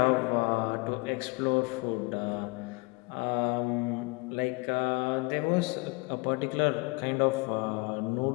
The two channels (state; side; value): quieter; right; 27.5 dB